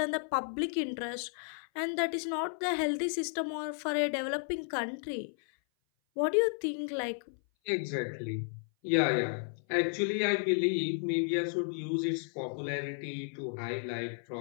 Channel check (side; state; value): right; silent; 56 dB below the other